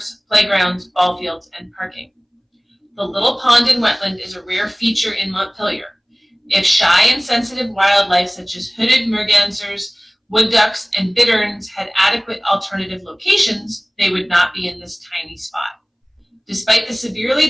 playgrounds, ball fields, and parking. The little pond and wetland is a rare feature in Montpelier. If shy and sensitive wildlife such as hooded mergansers, wood ducks, and bitterns had adequate alternative locations, they would not be in this tiny spot. Despite the severely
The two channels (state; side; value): identical; both; correlation 1.00